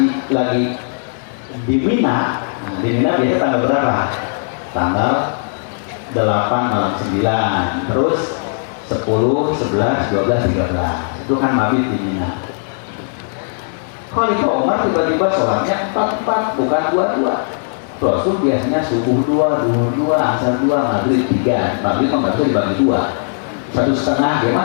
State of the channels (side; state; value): right; silent; digital silence